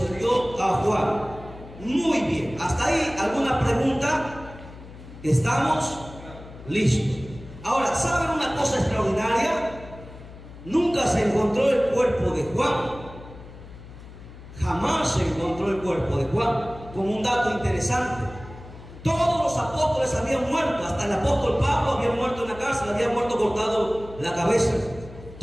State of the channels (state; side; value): noise; left; hum, 16 dB below the sound